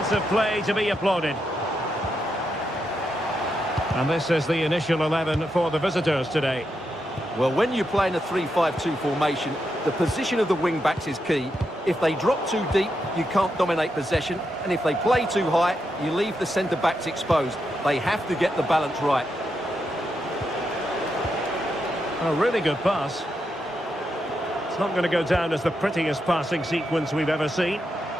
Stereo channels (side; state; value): both; normal; correlation 0.84